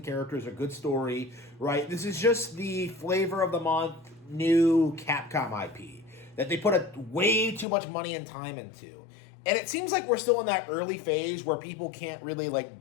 characters, or good story, right? This is just the flavor of the month new Capcom IP that they put way too much money and time into. And it seems like we're still in that early phase where people can't really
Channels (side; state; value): right; drops out; at 7.7 s